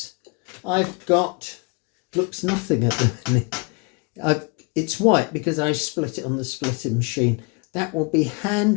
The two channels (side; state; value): right; quieter; 31.6 dB